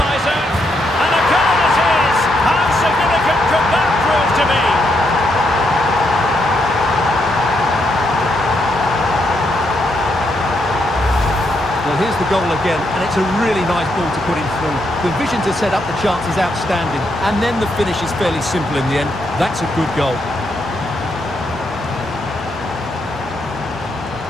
And a goal it is! How significant could that prove to be? Well, here's the goal again, and it's a really nice ball to put him through. The vision to set up the chance is outstanding, and then the finish is fairly simple in the end. That's a good goal.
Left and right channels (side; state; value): both; normal; correlation 0.78